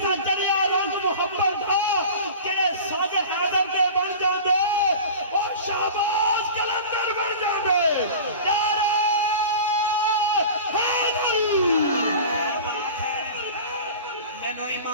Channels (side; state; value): both; inverted; correlation -0.36